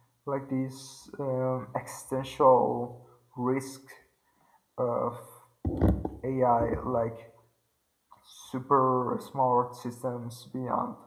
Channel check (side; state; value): both; identical; correlation 1.00